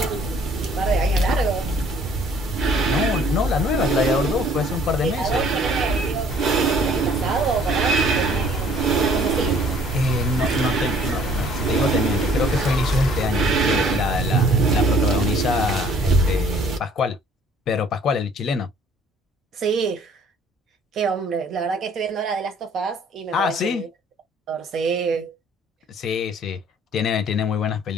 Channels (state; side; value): normal; both; correlation 0.57